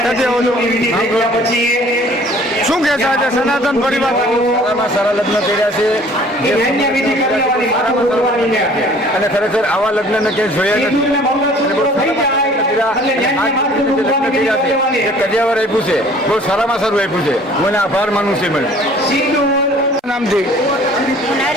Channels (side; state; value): both; normal; correlation 0.53